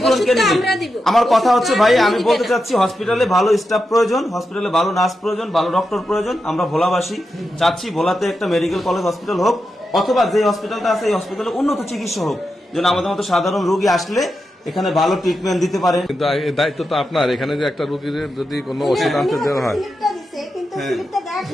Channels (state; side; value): normal; both; correlation 0.88